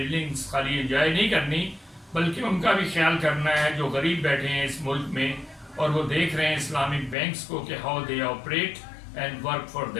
خالی انجوائے نہیں کرنی، بلکہ ان کا بھی خیال کرنا ہے جو غریب بیٹھے ہیں اس ملک میں اور وہ دیکھ رہے ہیں اسلامک بینکس کو کہ how they operate and work for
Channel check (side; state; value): right; drops out; at 7.2 s